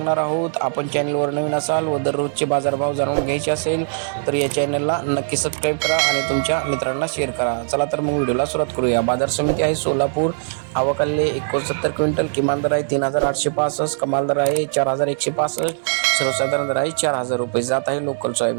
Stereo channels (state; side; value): silent; left; 65 dB below the other